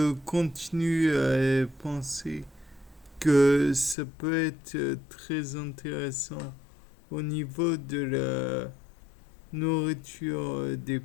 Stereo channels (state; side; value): drops out; right; at 4.0 s